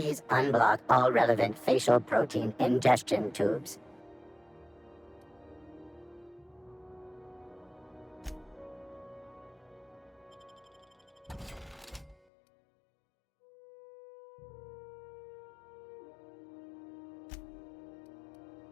unblock all relevant facial protein ingestion tubes.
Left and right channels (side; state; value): right; drops out; at 12.2 s